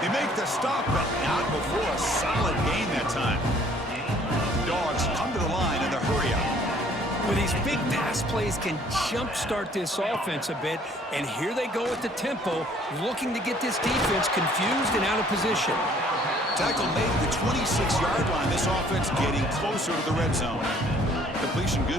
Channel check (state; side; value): normal; both; correlation 0.58